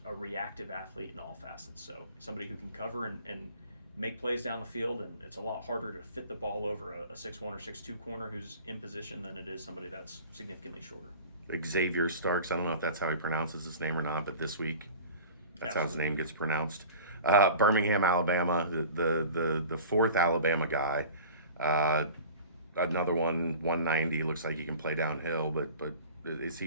a reactive athlete in all facets. So somebody who can cover and make plays down the field, and it's a lot harder to fit the ball over a 6'1" or 6'2" corner who's in position than it is somebody that's significantly shorter. Xavier Starks, I don't know if that's how he pronounces his name or not, but this week that's how his name gets pronounced. Birmingham, Alabama, the fourth Alabama guy. Another one, 190, looks like he can play downhill, but is he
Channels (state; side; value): inverted; both; correlation -0.39